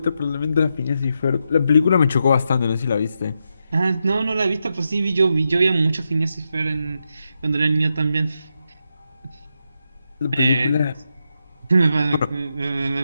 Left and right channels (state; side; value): inverted; both; correlation -0.85